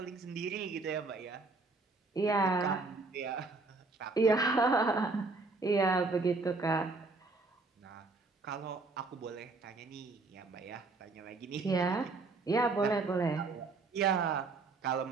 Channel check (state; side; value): quieter; left; 3.8 dB